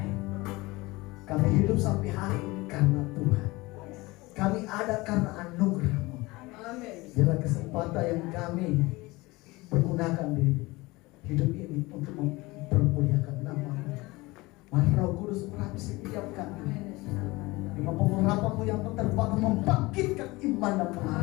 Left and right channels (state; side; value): quieter; right; 22.0 dB